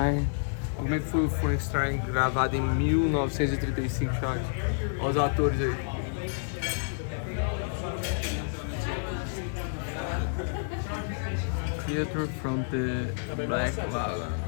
Como é que foi o Frankenstein gravado em 1935, chat? Olha os atores aí. Theater from the Black Lagoon.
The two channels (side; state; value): right; silent; digital silence